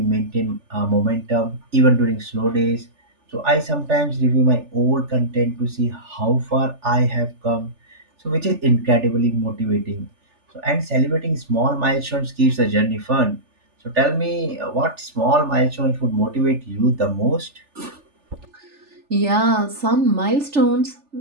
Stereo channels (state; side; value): late; left; 3.4 ms